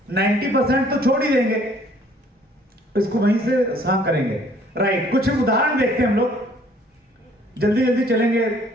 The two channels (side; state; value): both; normal; correlation 0.59